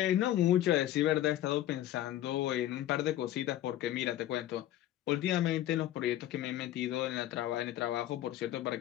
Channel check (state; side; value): quieter; right; 13.2 dB